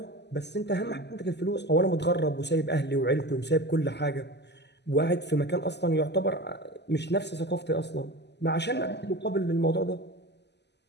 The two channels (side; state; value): right; late; 0.50 ms